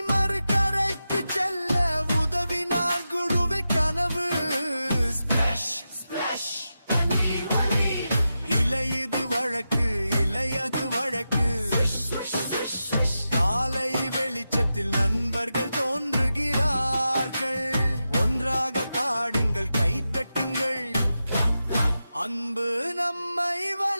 காலை வெளிச்சத்தில் நண்பர்கள் தோன்றுகிறார்கள். ஒன்றாக பாடுங்கள், கைதட்டுங்கள். அன்பு நம்மை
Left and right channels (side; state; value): both; inverted; correlation -0.90